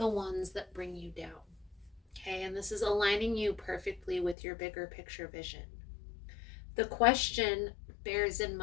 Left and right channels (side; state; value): right; drops out; at 4.4 s